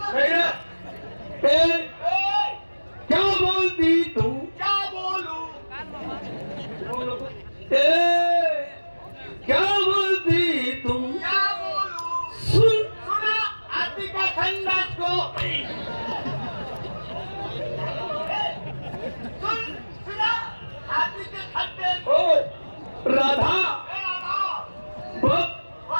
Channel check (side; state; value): both; inverted; correlation -1.00